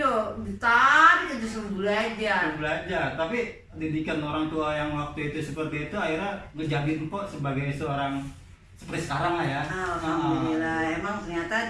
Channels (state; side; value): identical; both; correlation 1.00